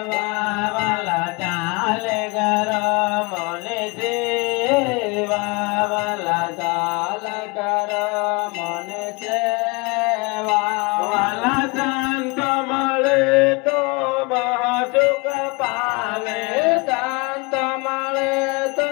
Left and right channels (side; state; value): right; quieter; 27.9 dB